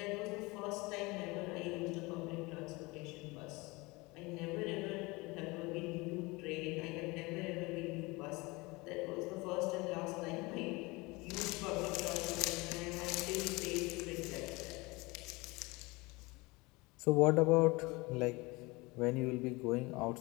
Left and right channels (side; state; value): right; quieter; 24.1 dB